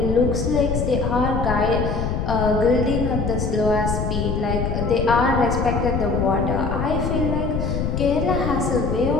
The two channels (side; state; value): left; noise; rumble, 1 dB below the sound